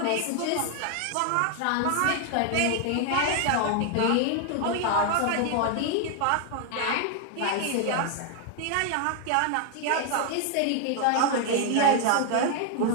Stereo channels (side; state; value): both; different; correlation 0.00